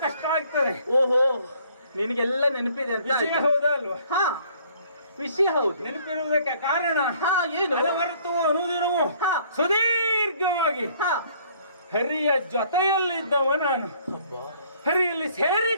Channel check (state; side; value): inverted; both; correlation -0.60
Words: ಕಷ್ಟ ಆಗ್ತದೆ. ಓಹೋ, ನಿನಗೆಲ್ಲ ನೆನಪಿದೆ ಅಂತ ವಿಷಯ ಹೌದಾ ಅಲ್ವಾ? ವಿಷಯ ಹೌದು. ನೆನಪಿರುವುದಕ್ಕೆ ಕಾರಣ ಏನು? ಅನವರತವೂ ಅನುದಿನವೂ ಸುದೀರ್ಘವಾಗಿ ಹರಿಯ ಜೊತೆಯಲ್ಲಿದ್ದವ ನಾನು, ಹರಿಯಲ್ಲಿ